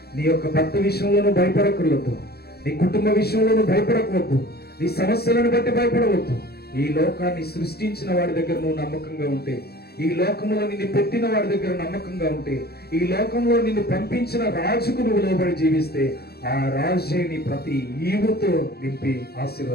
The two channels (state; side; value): late; right; 0.46 ms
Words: నీ యొక్క భర్త విషయంలో నువ్వు భయపడక్కర్లేదు, నీ కుటుంబ విషయంలో నువ్వు భయపడకవద్దు, నీ సమస్యలను బట్టి భయపడవద్దు. ఈ లోకాన్ని సృష్టించిన వాడి దగ్గర నువ్వు నమ్మకంగా ఉంటే, ఈ లోకంలో నిన్ను పెట్టిన వాడి దగ్గర నమ్మకంగా ఉంటే, ఈ లోకంలో నిన్ను పంపించిన రాజుకు నువ్వు లోబడి జీవిస్తే, ఆ రాజే నీ ప్రతి ఈవుతో నింపి